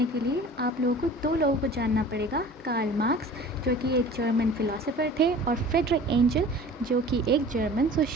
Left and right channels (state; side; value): normal; both; correlation 0.43